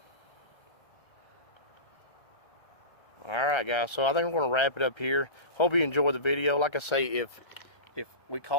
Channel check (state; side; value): late; right; 1.4 ms